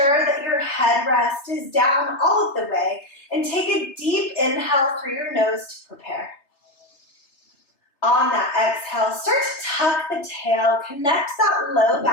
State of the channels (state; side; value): late; right; 3.4 ms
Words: that your headrest is down all of the way and take a deep inhale through your nose to prepare. On that exhale, start to tuck the tail, connect that low